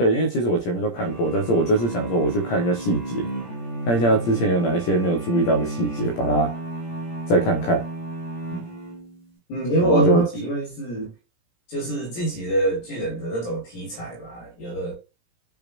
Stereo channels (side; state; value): right; late; 17 ms